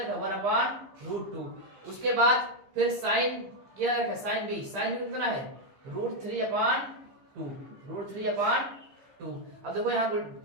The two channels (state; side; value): late; left; 15 ms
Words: है 1/√2। उसके बाद फिर sin क्या रखा है sin b कितना है √3/2, √3/2। अब देखो यहाँ